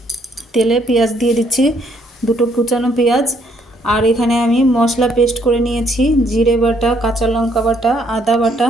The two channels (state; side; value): normal; both; correlation 0.68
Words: তেলে পেঁয়াজ দিয়ে দিচ্ছি, দুটো কুচানো পেঁয়াজ। আর এখানে আমি মশলা পেস্ট করে নিয়েছি, জিরে বাটা, কাঁচা লঙ্কা বাটা, আদা বাটা